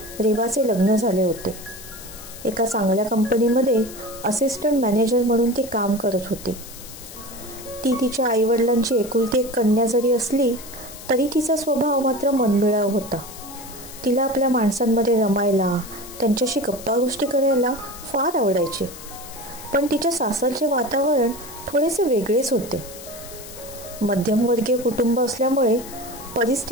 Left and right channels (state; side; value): noise; left; hiss, 15 dB below the sound